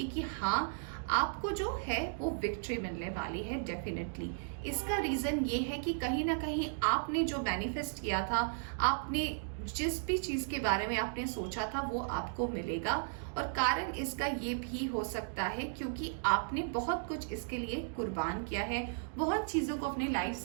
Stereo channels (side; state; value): left; silent; digital silence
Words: कि हाँ, आपको जो है वो विक्ट्री मिलने वाली है डेफिनेटली। इसका रीज़न ये है कि कहीं ना कहीं आपने जो मैनिफेस्ट किया था, आपने जिस भी चीज़ के बारे में आपने सोचा था वो आपको मिलेगा। और कारण इसका ये भी हो सकता है क्योंकि आपने बहुत कुछ इसके लिए कुर्बान किया है, बहुत चीज़ों को अपनी लाइफ